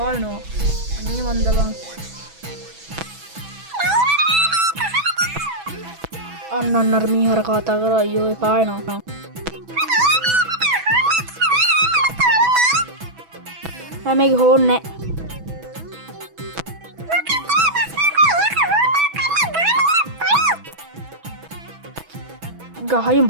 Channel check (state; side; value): late; left; 6.1 ms